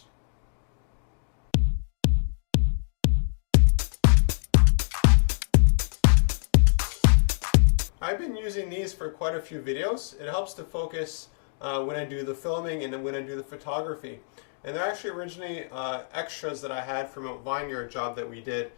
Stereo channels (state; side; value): silent; right; digital silence